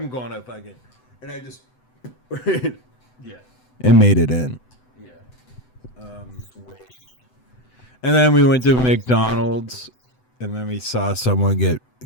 going to fucking, and I just Yeah. and made it in. Yeah. Switch. And then we went to McDonald's, and then we saw someone get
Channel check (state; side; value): late; right; 7.9 ms